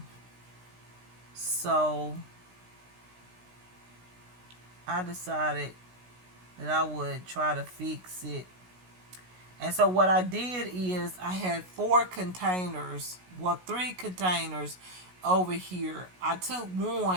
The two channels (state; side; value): late; left; 16 ms